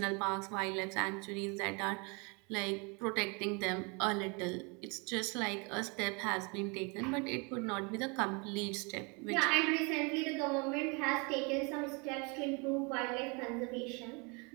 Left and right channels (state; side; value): quieter; left; 31.1 dB